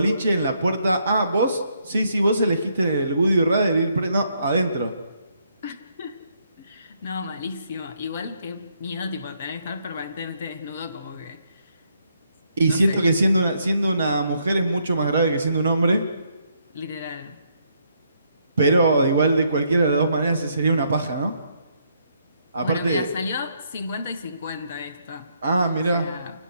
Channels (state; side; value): inverted; both; correlation -0.73